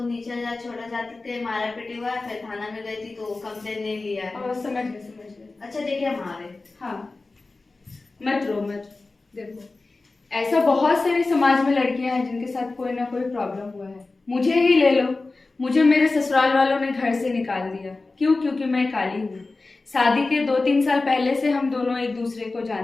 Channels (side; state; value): right; quieter; 3.5 dB